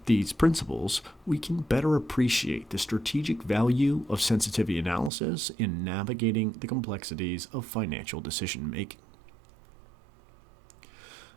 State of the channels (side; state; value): left; drops out; at 5.1 s